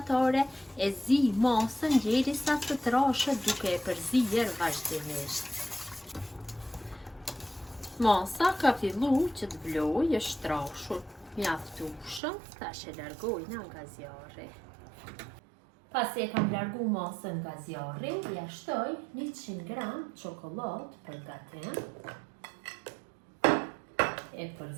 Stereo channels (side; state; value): left; drops out; at 12.2 s